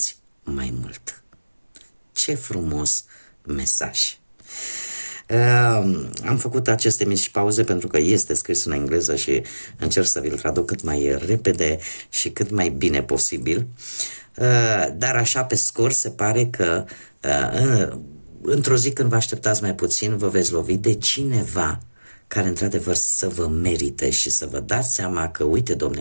mai mult. Ce frumos mesaj! Am făcut aceste mici pauze pentru că este scris în engleză și încerc să vi-l traduc cât mai repede și cât mai bine posibil. Dar așa pe scurt se pare că într-o zi când vă așteptați mai puțin vă veți lovi de cineva care într-adevăr să vă merite și să vă dați seama că, uite, domne,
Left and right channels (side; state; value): both; inverted; correlation -1.00